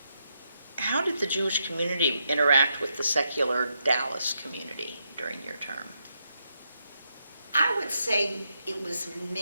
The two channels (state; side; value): inverted; both; correlation -0.81